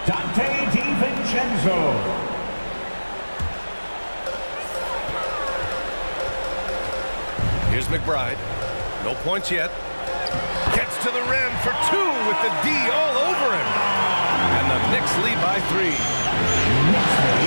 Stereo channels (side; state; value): both; inverted; correlation -1.00